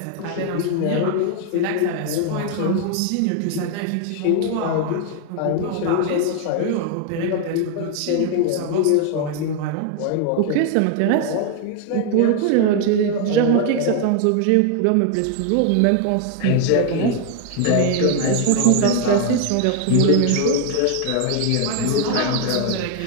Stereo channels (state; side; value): different; both; correlation 0.00